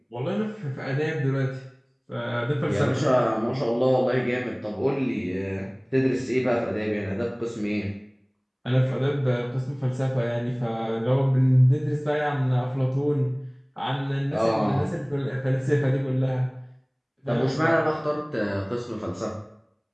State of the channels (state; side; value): identical; both; correlation 1.00